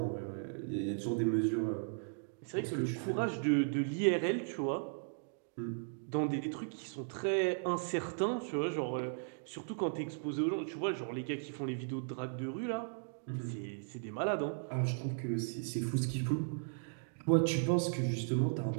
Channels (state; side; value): silent; left; digital silence